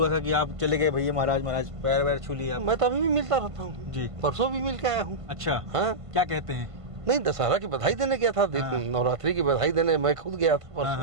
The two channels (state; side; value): late; left; 1.5 ms